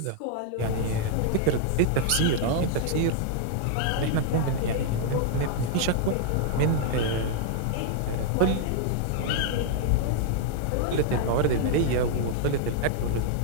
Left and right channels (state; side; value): different; both; correlation -0.01